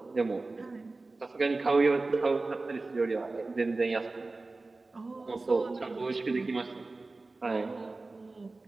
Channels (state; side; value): quieter; left; 3.4 dB